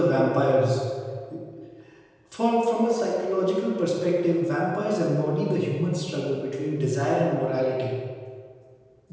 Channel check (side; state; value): both; identical; correlation 1.00